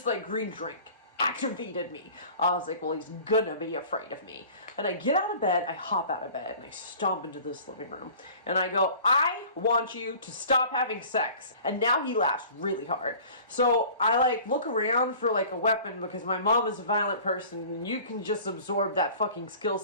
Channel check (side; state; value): both; inverted; correlation -0.45